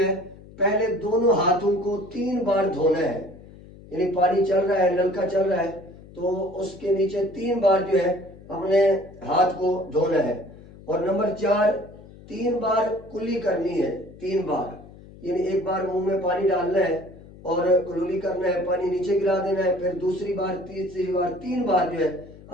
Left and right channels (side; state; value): left; noise; hum, 20 dB below the sound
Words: پہلے دونوں ہاتھوں کو 3 بار دھونا ہے، یعنی پانی چل رہا ہے، نلکا چل رہا ہے تو اس کے نیچے 3 بار جو ہے اپنے ہاتھ کو دھونا ہے۔ اور نمبر 4، 3 بار کلی کرنی ہے، 3 بار، یعنی ایک بار منہ میں پانی ڈالنا ہے اور کلی کرنا ہے، پانی نیچے گرا دینا ہے، پھر دوسری بار، تیسری بار، 3 بار جو ہے